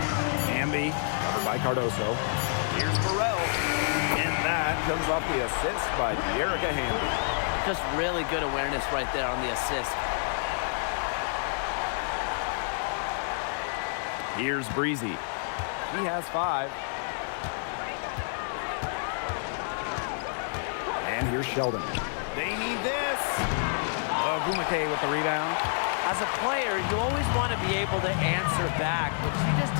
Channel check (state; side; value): silent; right; 59 dB below the other